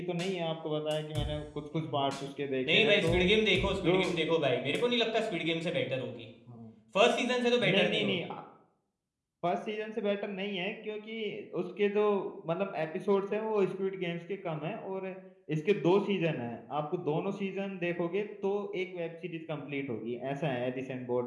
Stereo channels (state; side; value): identical; both; correlation 1.00